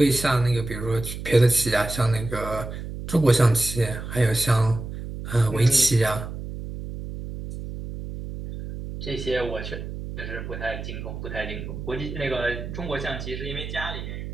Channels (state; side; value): noise; right; hum, 8 dB below the sound